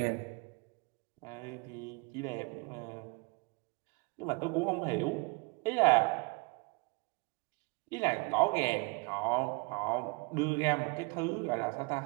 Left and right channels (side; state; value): left; quieter; 29.6 dB